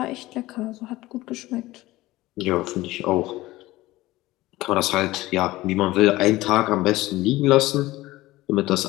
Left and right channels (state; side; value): quieter; right; 18.1 dB